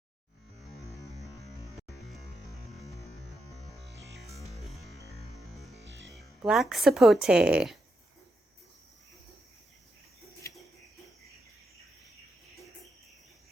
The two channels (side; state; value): both; normal; correlation 0.84